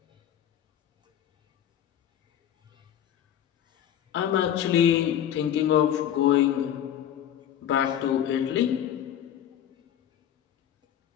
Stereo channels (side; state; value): right; quieter; 10.4 dB